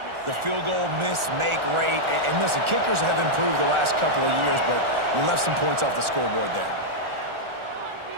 the field goal miss-make rate. And listen, kickers have improved the last couple of years, but we left some points off the scoreboard there.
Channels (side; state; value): left; late; 1.4 ms